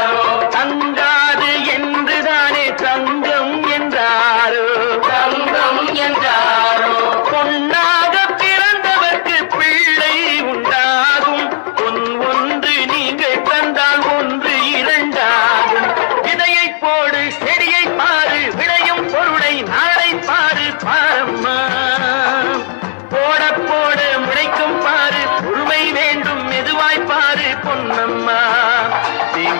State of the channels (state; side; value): silent; right; digital silence